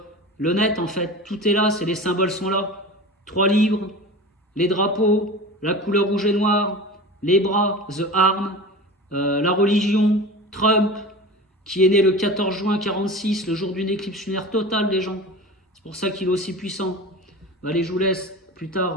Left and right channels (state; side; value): normal; both; correlation 0.33